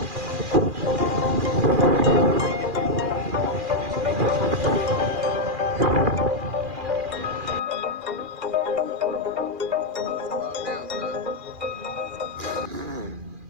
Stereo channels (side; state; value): left; late; 2.4 ms